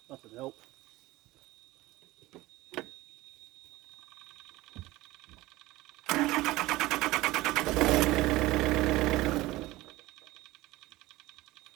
that would help.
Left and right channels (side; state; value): left; quieter; 18.7 dB